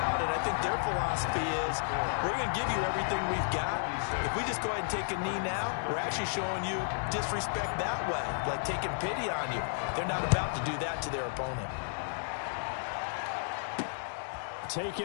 And I think their philosophy is, we're going to give you everything we've got. If we just go ahead and take a knee now, we're actually showing you disrespect that way, like taking pity on you. They're not about to do that to their opponent.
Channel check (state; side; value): silent; right; digital silence